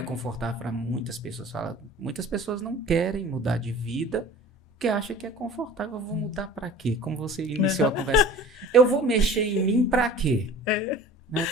confortável para muitas pessoas, muitas pessoas não querem mudar de vida porque acham que é confortável. Eu vou mudar para quê? Como você iniciou a conversa, eu vou mexer em mim para quê? Né?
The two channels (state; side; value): normal; both; correlation 0.42